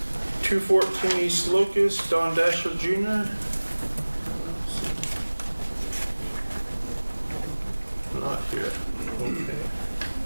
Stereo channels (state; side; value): inverted; both; correlation -1.00